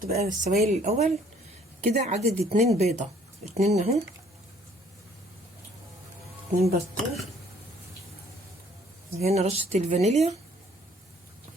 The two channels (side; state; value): both; normal; correlation 0.60